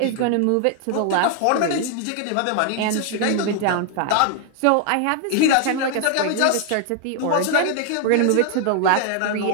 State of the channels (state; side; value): different; both; correlation 0.00